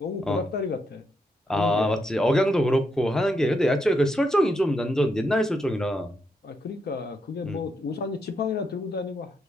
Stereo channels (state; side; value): normal; both; correlation 0.80